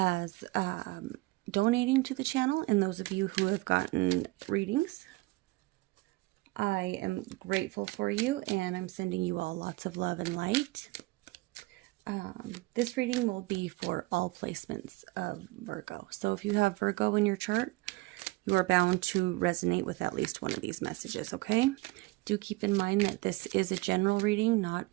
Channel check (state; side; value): quieter; left; 21.7 dB